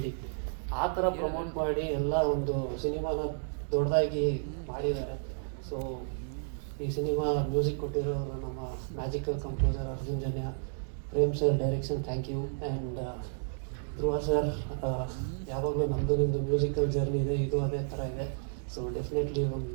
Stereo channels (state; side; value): silent; left; digital silence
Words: ಆ ಥರ ಪ್ರಮೋಟ್ ಮಾಡಿ ಎಲ್ಲ ಒಂದು ಸಿನಿಮಾನ ದೊಡ್ಡದಾಗಿ ಮಾಡಿದ್ದಾರೆ. ಸೊ ಈ ಸಿನಿಮಾ ಮ್ಯೂಸಿಕ್ ಕೊಟ್ಟಿರೋ ನಮ್ಮ magical composer Arjun Janya, Prem sir direction thank you, and Dhruva sir ಯಾವಾಗಲೂ ನಮ್ಮದು ನಿಮ್ಮದು ಮ್ಯೂಸಿಕಲ್ ಜರ್ನಿ ಇದೆ, ಇದು ಅದೇ ಥರ ಇದೆ. ಸೊ ಡೆಫಿನೆಟ್ಲಿ